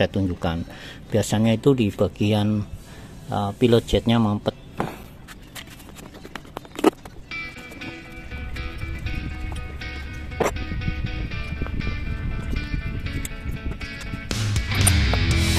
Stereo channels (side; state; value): both; identical; correlation 1.00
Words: tunjukkan. Biasanya itu di bagian pilot jetnya mampet.